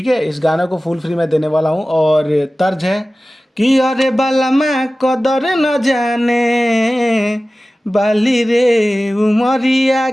है। इस गाने को फुल फ्री में देने वाला हूँ और तर्ज है कि अरे बाला मैं कदर न जाने बाली रे उमरिया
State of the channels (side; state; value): both; normal; correlation 0.96